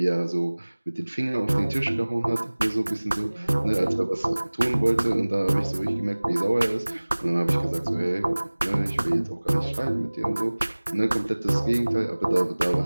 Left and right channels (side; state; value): both; inverted; correlation -1.00